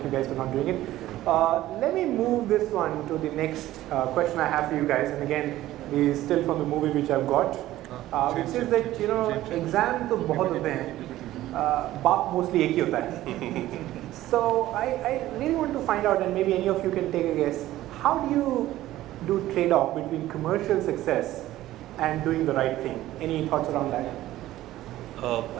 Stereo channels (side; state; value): left; quieter; 15.0 dB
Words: you guys for not doing it. Let me move this one to the next question I have for you guys, and again, this is still from the movie which I've got, which says that, you know, exam to bahut hote hain, baap mostly ek hi hota hai. So I really want to find out, and maybe any of you can take a guess, how do you do trade-off between commercial success and doing the right thing? Any thoughts around that?